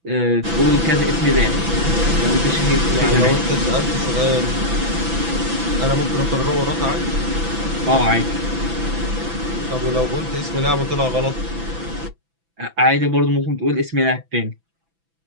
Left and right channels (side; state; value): left; late; 6.0 ms